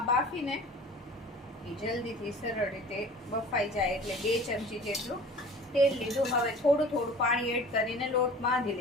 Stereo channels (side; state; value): both; normal; correlation 0.43